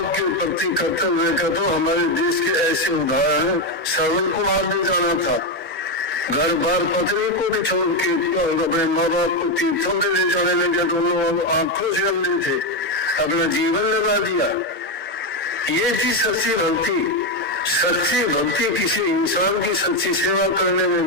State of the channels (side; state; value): both; normal; correlation 0.08